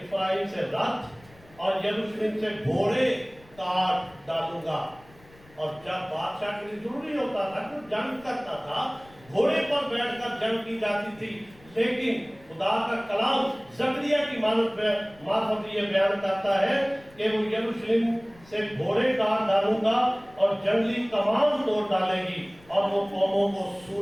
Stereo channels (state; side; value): noise; left; rumble, 26 dB below the sound